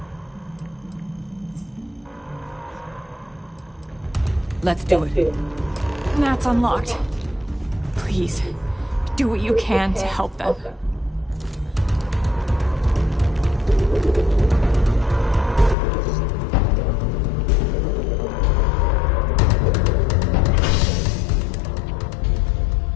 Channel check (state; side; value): drops out; right; at 15.8 s